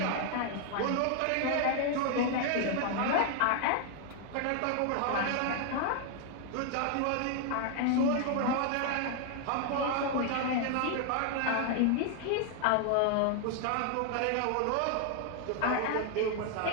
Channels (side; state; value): both; different; correlation 0.00